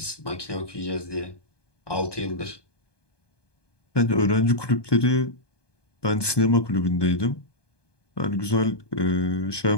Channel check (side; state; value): right; late; 1.2 ms